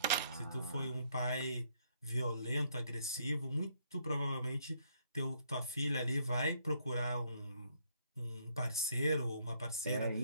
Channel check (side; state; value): both; inverted; correlation -0.70